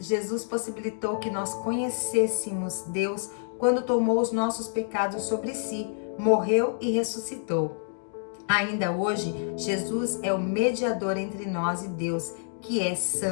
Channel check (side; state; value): right; silent; digital silence